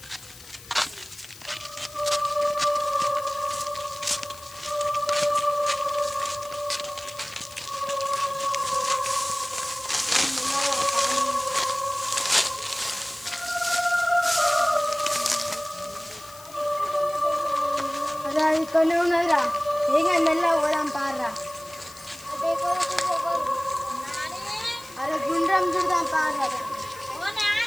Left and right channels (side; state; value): left; noise; hiss, 19 dB below the sound